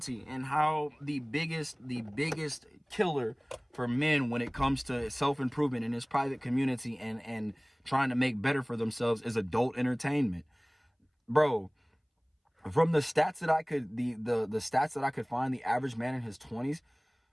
and how the biggest killer for men when it comes to self-improvement in his private community and trying to make better for themselves is adult entertainment. Bro, from the stats that I could the stats that I could find, the average man in his 20s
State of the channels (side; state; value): both; identical; correlation 1.00